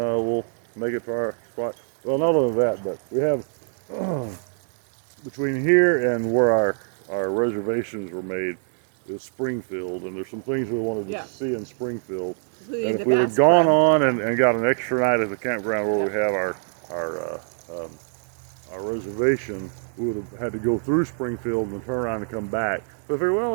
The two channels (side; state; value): left; silent; 62 dB below the other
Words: make it to our spot. Well, not only that, but we have between here and where our reservations were made is Springfield, and there's some things we wanted to see in Springfield. And if we had gone on and got an extra night at the campground where we have our reservation, we would have had to go through Springfield and turn around and come back. But I figured, well,